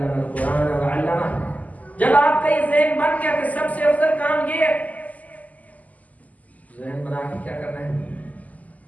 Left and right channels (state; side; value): late; right; 0.076 ms